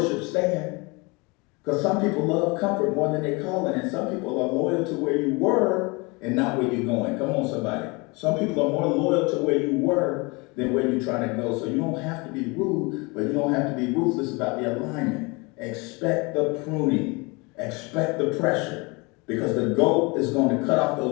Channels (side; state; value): right; quieter; 27.4 dB